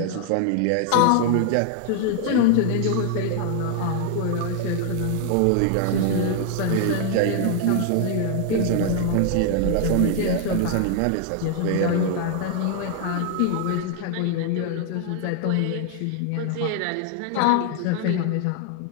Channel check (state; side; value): different; both; correlation 0.00